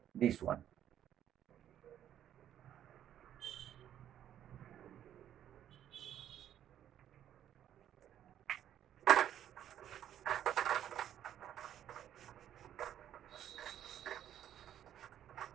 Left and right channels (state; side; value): quieter; left; 10.7 dB